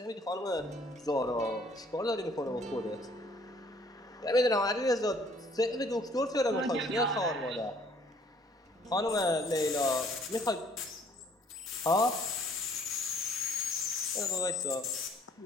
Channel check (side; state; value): both; normal; correlation 0.59